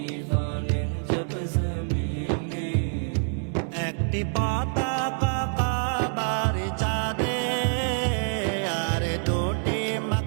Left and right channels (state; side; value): silent; left; 61 dB below the other